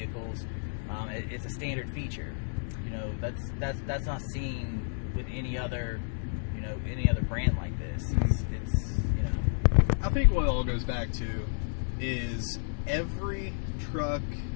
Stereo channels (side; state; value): right; silent; digital silence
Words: It's a standard feature. You know, that's not seen with any other brand like this. It's you know. I think what it all goes back to is every truck